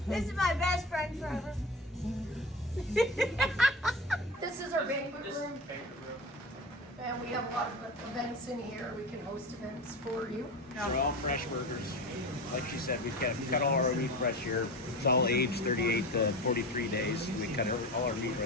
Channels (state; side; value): normal; both; correlation 0.29